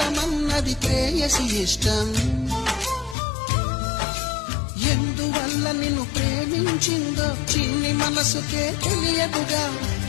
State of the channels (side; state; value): right; drops out; at 3.2 s